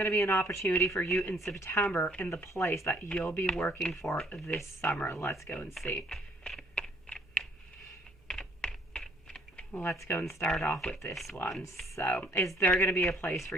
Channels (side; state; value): both; normal; correlation 0.62